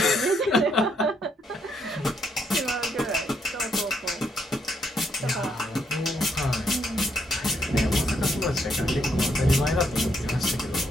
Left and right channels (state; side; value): normal; both; correlation 0.74